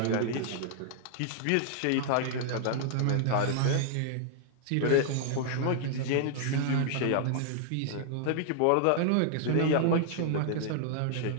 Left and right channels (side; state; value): both; different; correlation -0.01